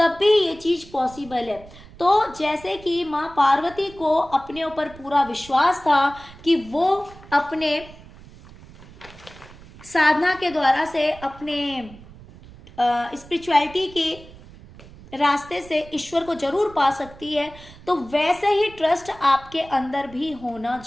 भी ये चीज पॉसिबल है। तो जैसे कि माँ पार्वती को अपने ऊपर पूरा विश्वास था कि वो अपने साधना के द्वारा से, अपने स्पिरिचुअलिटी के रास्ते से ईश्वर को जरूर पा सकती है, तो वैसे ही ट्रस्ट आपके अंदर भी होना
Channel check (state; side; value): noise; right; rumble, 20 dB below the sound